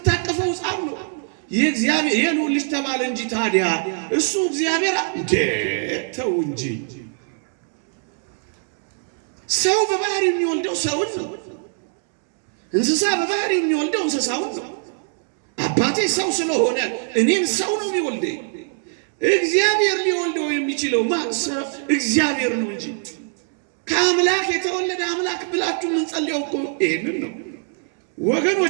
ሕፃን ነው። የእግዚአብሔር የልዑል ልጅ ተባለ እንጂ ታዲያ እሱ እግዚአብሔር ተው እንጂ። ሰው በባህሪ የሚወልደው ሰውን ነው። እንስሳ በባህሪ የሚወልደው እንስሳውን ነው። አባቴ ሰው ስለሆነ እኔም ሰው ነው የሚወልደኝ። እግዚአብሔር ሊወልደው የሚችለው ማሰብ እግዚአብሔር ነው እንጂ ከአምላክ የተወለደ አምላክ ብላችሁ የምንጸልየው እኮ ይሄንን ነው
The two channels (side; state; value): left; silent; 57 dB below the other